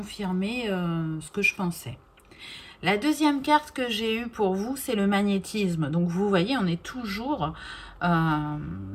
ce que je pensais. La deuxième carte que j'ai eue pour vous, c'est le magnétisme. Donc, vous voyez, on est toujours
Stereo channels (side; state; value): both; identical; correlation 1.00